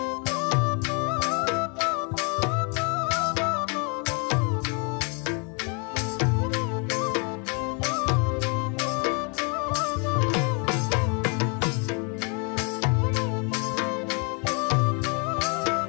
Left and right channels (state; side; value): quieter; right; 35.2 dB